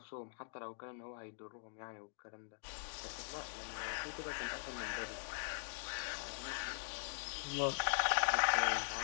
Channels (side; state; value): right; silent; digital silence